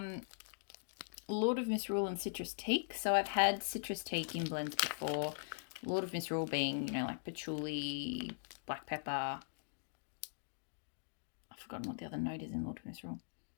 Lord of Misrule and Citrus Teak. So I've had Citrus Teak in blends before. Lord of Misrule being, like patchouli, black pepper. I've forgotten what the other note is in Lord of Misrule.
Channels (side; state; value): right; silent; digital silence